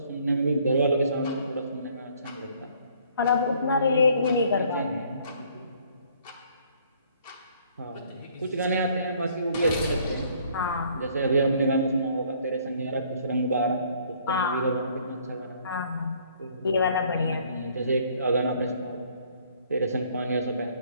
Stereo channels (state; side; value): inverted; both; correlation -0.61